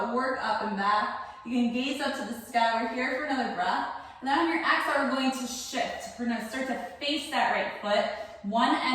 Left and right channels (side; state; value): both; identical; correlation 1.00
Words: work up and back. You can gaze up to the sky. We're here for another breath. And then on your exhale, we're going to shift. We're gonna start to face that right foot, one